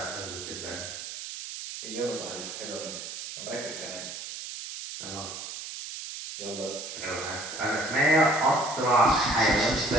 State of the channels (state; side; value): noise; right; hiss, 9 dB below the sound